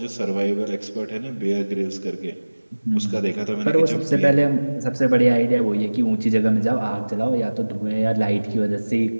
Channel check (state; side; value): inverted; both; correlation -1.00